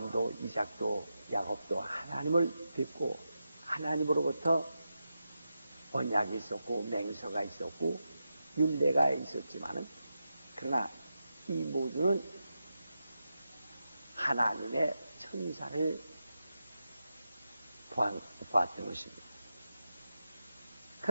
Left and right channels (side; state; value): both; inverted; correlation -0.89